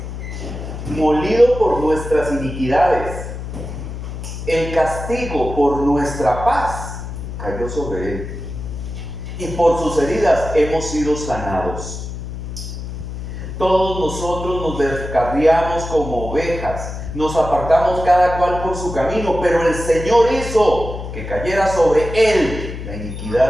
molido por nuestras iniquidades. El castigo por nuestra paz cayó sobre Él, y por sus heridas hemos sido sanados. Todos nosotros nos descarriamos como ovejas, nos apartamos cada cual por su camino, pero el Señor hizo que cayera sobre Él la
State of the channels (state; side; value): noise; left; hum, 8 dB below the sound